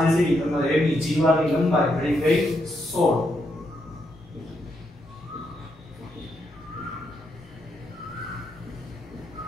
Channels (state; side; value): noise; left; rumble, 27 dB below the sound